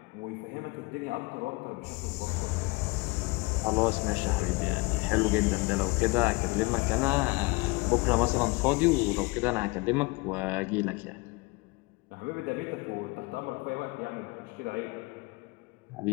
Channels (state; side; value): quieter; right; 25.6 dB